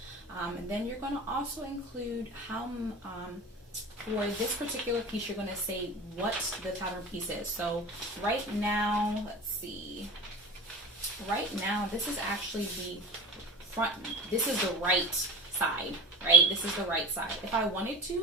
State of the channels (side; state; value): both; normal; correlation 0.33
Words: And then you're going to also include how, for this particular piece, you're going to say what the pattern piece is. So right now, let's see. Right now, this is actually the front. This is the right side, right? This is the right side. If I wanted